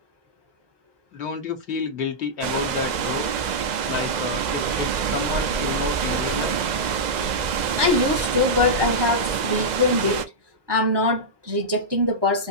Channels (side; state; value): left; late; 2.0 ms